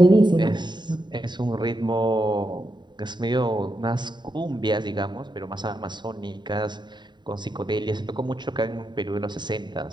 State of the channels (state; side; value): late; left; 0.22 ms